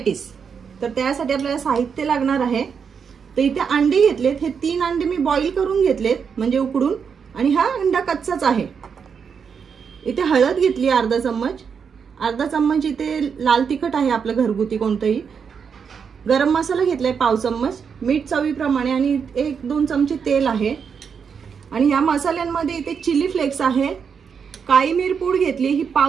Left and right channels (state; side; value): quieter; left; 6.5 dB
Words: तर त्यासाठी आपल्याला साहित्य लागणार आहे. तर इथे अंडे घेतलेत, हे 3 अंडे मी बॉईल करून घेतलेत म्हणजे उकडून, आणि हा अंडा कच्चाच आहे. इथे हळद घेतली अर्धा चम्मच, इथे लाल तिखट आहे आपलं घरगुती कोणतंही, गरम मसाला घेतलाय पाव चम्मच, मीठ चवीप्रमाणे, आणि 1-2 चमचे तेल आहे. आणि या मसाल्यांमध्ये इथे चिली फ्लेक्स आहे, काळी मिरपूड घेतली ही